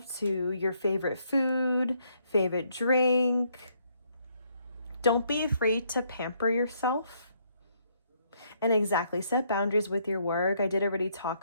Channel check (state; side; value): inverted; both; correlation -0.71